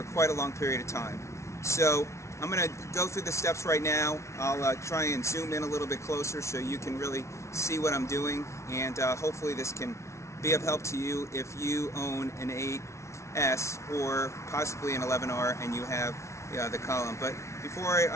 quite a long period of time. So I'm going to go through the steps right now. I'll try and zoom in a little bit closer so you can really see what I'm doing, and hopefully this can be of help to you if you own an 8S or possibly an 11R and you have the column. But before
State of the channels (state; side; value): late; right; 0.13 ms